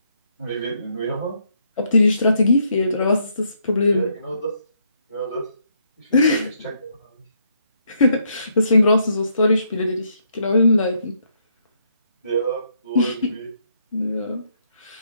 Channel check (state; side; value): inverted; both; correlation -0.74